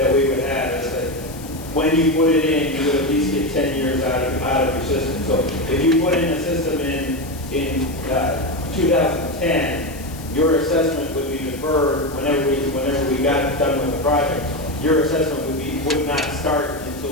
we would have is that when you put it in, you would at least get 10 years out of your system. So if you put in a system in 2010, your assessment would be deferred whenever we got done with the project. your assessment would not start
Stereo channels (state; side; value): noise; left; hiss, 17 dB below the sound